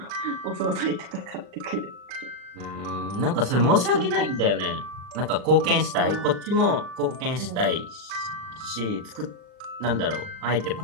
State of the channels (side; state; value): left; late; 39 ms